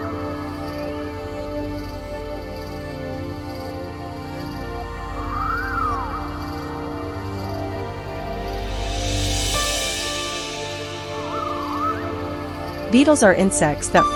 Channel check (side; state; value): both; identical; correlation 1.00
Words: Beetles are insects that